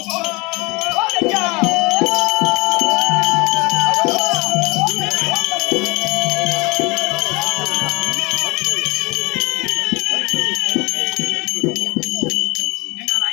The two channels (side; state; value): right; quieter; 25.8 dB